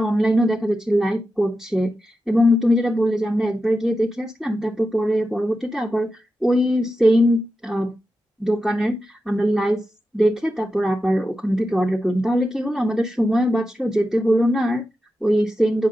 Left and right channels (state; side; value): normal; both; correlation 0.90